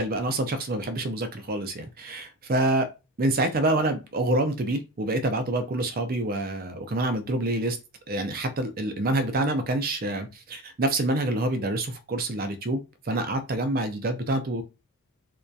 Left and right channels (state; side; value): normal; both; correlation 0.29